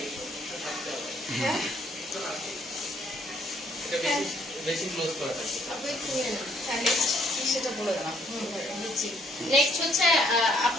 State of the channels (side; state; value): both; normal; correlation 0.67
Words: হ্যাঁ এটা বেশি বেশি ক্লোজ করা থাকে। আপু একটু নিয়ে নাও। হ্যাঁ নেক্সট কি সেটা বলে দেন আপু। নেক্সট হচ্ছে